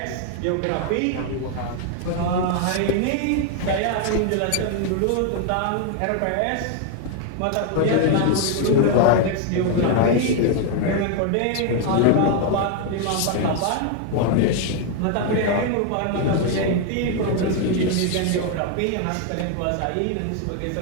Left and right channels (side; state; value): both; different; correlation 0.01